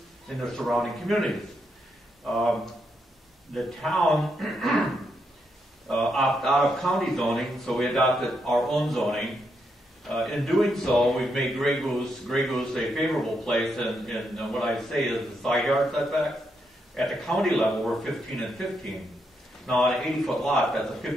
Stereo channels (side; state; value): both; normal; correlation 0.80